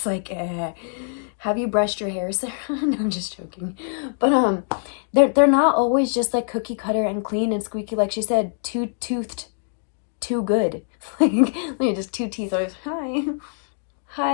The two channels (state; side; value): silent; right; digital silence